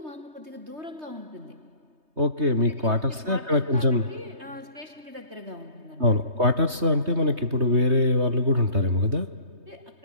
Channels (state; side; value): late; left; 3.2 ms